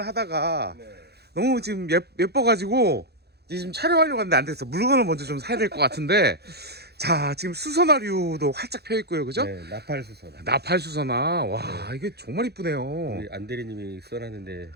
하다가 네. 너무 지금 예뻐가지고 이제 지금 촬영하려고 하는데 안 됐어. 물건을 먼저 좀 사야 될 것 같은데. 자, 지금 수선화류도 활짝 펴 있고요, 그죠? 네, 나팔수선. 나팔 수선화. 와, 이게 정말 이쁘네요. 우리 안대리님이 써놨는데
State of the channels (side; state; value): left; late; 0.48 ms